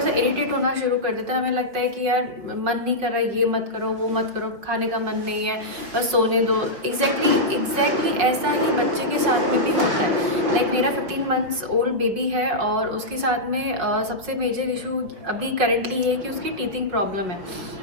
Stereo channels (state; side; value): late; left; 5.3 ms